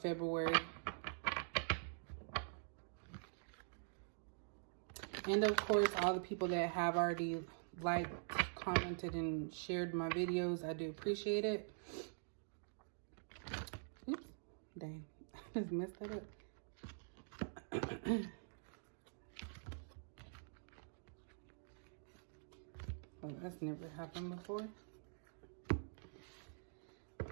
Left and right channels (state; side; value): silent; left; digital silence